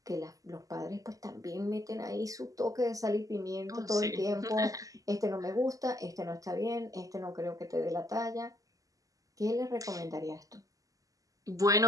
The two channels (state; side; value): late; left; 0.17 ms